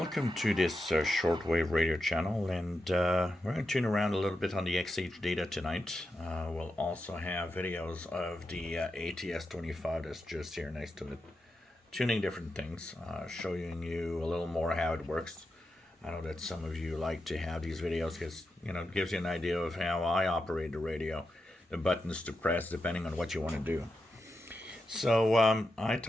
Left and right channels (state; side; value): normal; both; correlation 0.88